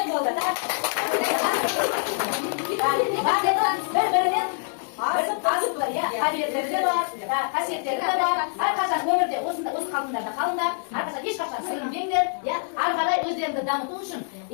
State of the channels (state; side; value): silent; right; 62 dB below the other